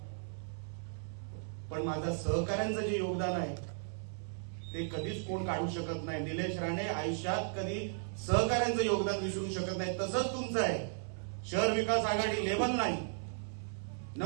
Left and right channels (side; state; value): left; silent; 54 dB below the other